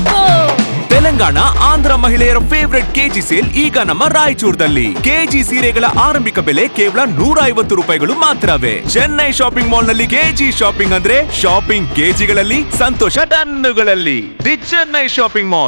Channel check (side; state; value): both; inverted; correlation -1.00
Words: ತೆಲಂಗಾಣ ಆಂಧ್ರ ಮಹಿಳೆಯರ ಫೇವರೆಟ್ ಕೆಜಿ ಸೇಲ್ ಈಗ ನಮ್ಮ ರಾಯಚೂರದಲ್ಲಿ. ಕೆಜಿ ಸೀರೆಗಳ ಆರಂಭಿಕ ಬೆಲೆ ಕೇವಲ 150 ರೂಪಾಯಿಗಳು ಮಾತ್ರವೇ. ಚೆನ್ನೈ ಶಾಪಿಂಗ್ ಮಾಲ್ ನಲ್ಲಿ ಕೆಜಿ ಶಾಪಿಂಗ್ ಅಂದ್ರೆ ಶಾಪಿಂಗ್ ಕೆಜಿಗಳಲ್ಲಿ, ಸಂತೋಷ ಟನ್ನುಗಳಲ್ಲಿ. The Chennai shopping